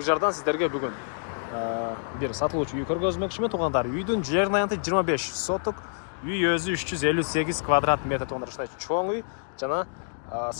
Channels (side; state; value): right; silent; digital silence